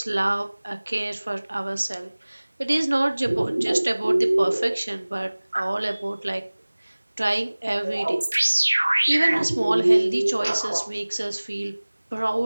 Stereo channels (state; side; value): inverted; both; correlation -1.00